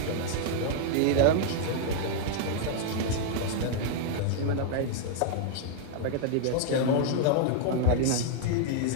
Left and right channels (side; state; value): both; different; correlation -0.01